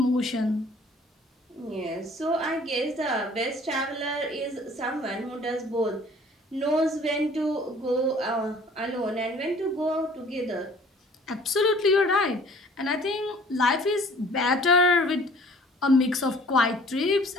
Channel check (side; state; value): both; normal; correlation 0.52